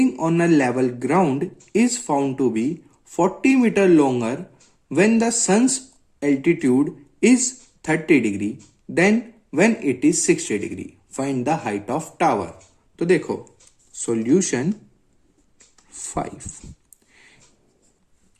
on a level ground is found to be 40 meter longer when the sun's altitude is 30 degree than when it is 60 degree. Find the height of tower. तो देखो solution 5,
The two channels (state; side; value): identical; both; correlation 1.00